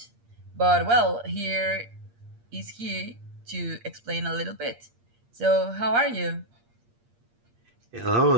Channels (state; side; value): late; left; 8.6 ms